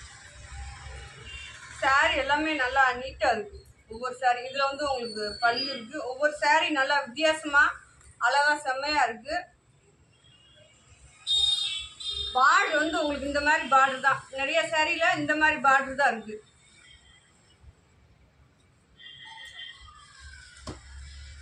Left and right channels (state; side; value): identical; both; correlation 1.00